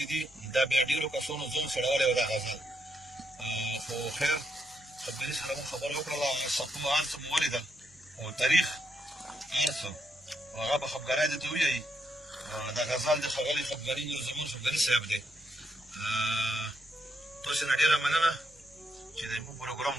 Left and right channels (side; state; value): both; normal; correlation 0.78